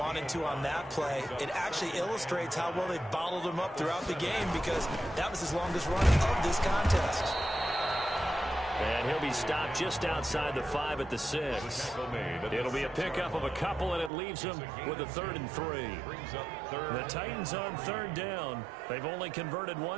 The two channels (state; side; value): drops out; left; at 14.1 s